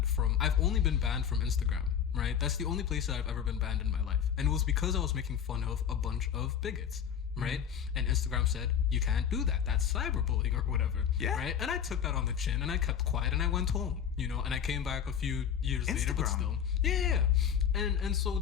from Instagram, right? That's the only place that I've ever been banned in my life, and it was because I was making fun of a bunch of bigots, right? And Instagram said you can't do that. That's cyberbullying or whatever, right? And I took that on the chin and I kept quiet and I went home, and I came back a few years later, but still, and so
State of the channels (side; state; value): right; quieter; 8.3 dB